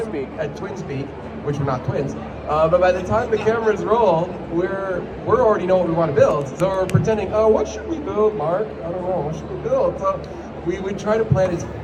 at twin speed, which we're not twins, but by the time the cameras roll, we're already know what we want to build. So we're pretending, oh, what should we build, Mark? I don't know, what should we build? So we try to plan as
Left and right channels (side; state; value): both; identical; correlation 1.00